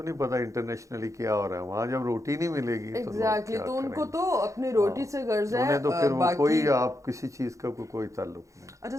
نہیں پتا انٹرنیشنل کیا ہو رہا ہے. وہاں جب روٹی نہیں ملے گی تو ان کو تو اپنی روٹی سے غرض ہے, انہیں تو پھر وہ کوئی آپ کسی چیز کا کوئی تعلق نہیں. اچھا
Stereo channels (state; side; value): late; left; 0.15 ms